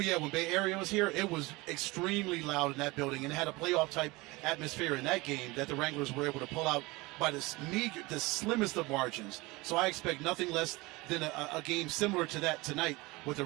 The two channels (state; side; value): quieter; left; 22.9 dB